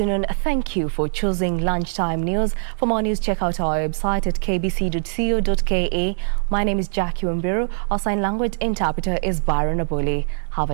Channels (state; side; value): silent; left; digital silence